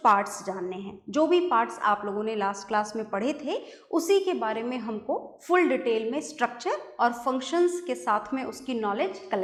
पार्ट्स जानने हैं। जो भी पार्ट्स आप लोगों ने लास्ट क्लास में पढ़े थे उसी के बारे में हमको फुल डिटेल में स्ट्रक्चर और फंक्शंस के साथ में उसकी नॉलेज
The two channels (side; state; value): both; identical; correlation 1.00